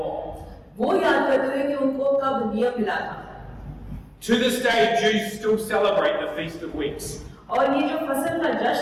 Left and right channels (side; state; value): both; identical; correlation 1.00